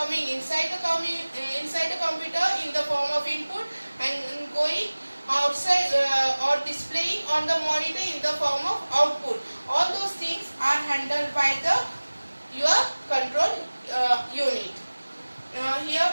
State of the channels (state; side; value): inverted; both; correlation -1.00